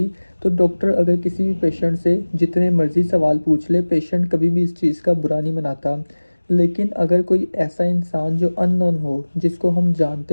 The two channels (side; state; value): both; inverted; correlation -1.00